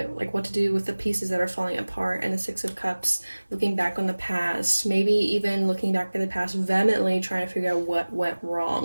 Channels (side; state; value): both; inverted; correlation -1.00